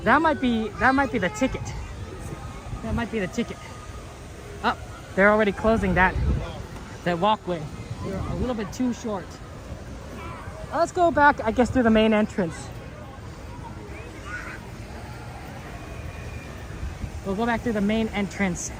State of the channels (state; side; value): identical; both; correlation 1.00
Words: That might be the ticket. That might be the ticket. Oh, they're already closing that walkway. They're a little bit too short. Let's go back, I guess, through the main entrance. We'll go back through the main entrance